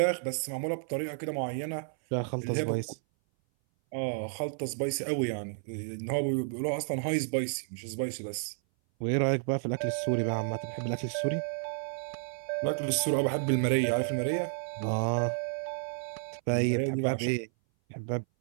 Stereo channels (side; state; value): left; silent; 57 dB below the other